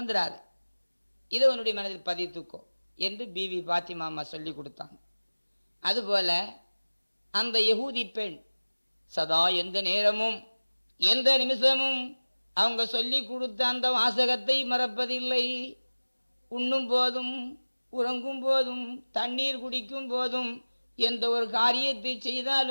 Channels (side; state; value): both; inverted; correlation -1.00